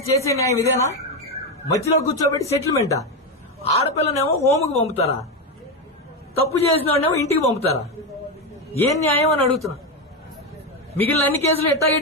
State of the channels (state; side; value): normal; both; correlation 0.11